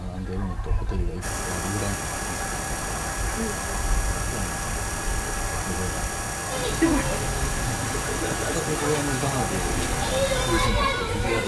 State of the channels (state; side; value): identical; both; correlation 1.00